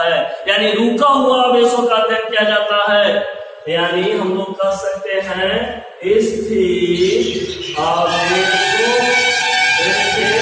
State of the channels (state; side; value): identical; both; correlation 1.00